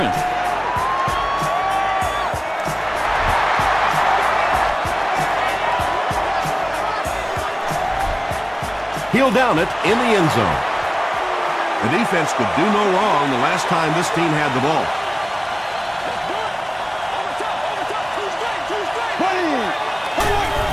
He'll down it in the end zone. The defense could do no wrong the last time this team had the ball.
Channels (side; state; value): both; identical; correlation 1.00